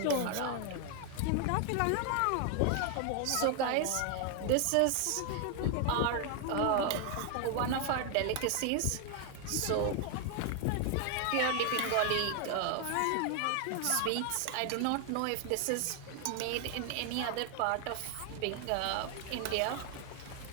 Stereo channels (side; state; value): both; different; correlation 0.00